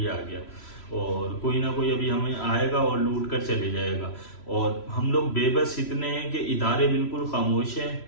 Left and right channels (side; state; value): right; late; 3.0 ms